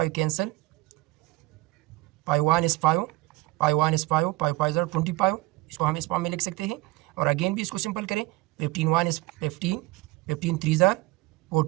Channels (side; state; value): left; quieter; 21.2 dB